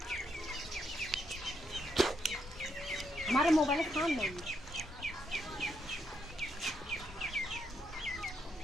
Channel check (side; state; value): both; normal; correlation 0.78